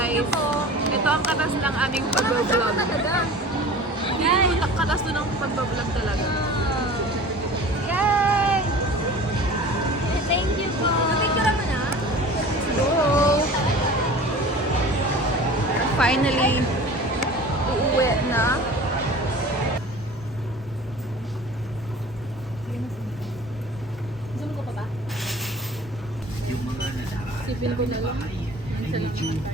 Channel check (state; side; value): normal; both; correlation 0.41